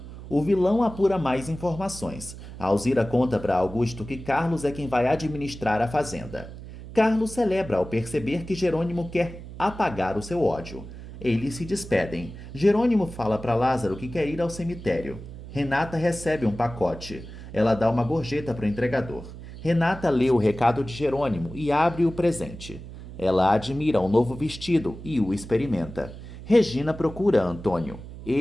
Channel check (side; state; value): right; noise; hum, 13 dB below the sound